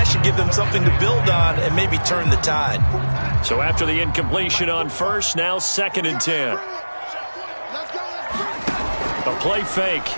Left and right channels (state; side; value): inverted; both; correlation -1.00